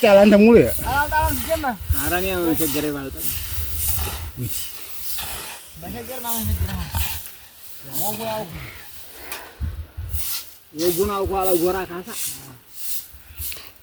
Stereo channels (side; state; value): both; identical; correlation 1.00